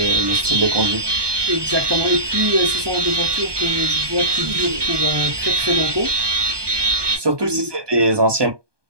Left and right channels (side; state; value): left; late; 1.2 ms